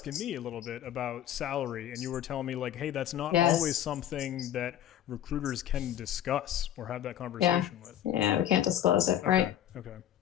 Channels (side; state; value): right; quieter; 11.3 dB